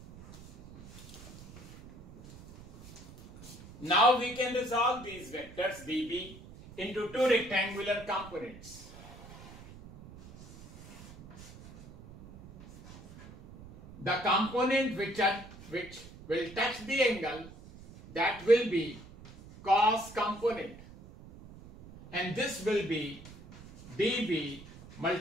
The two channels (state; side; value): noise; right; rumble, 18 dB below the sound